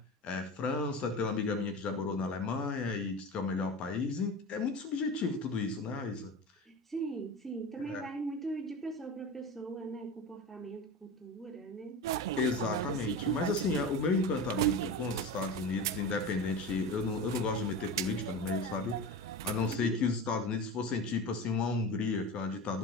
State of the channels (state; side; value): normal; both; correlation 0.28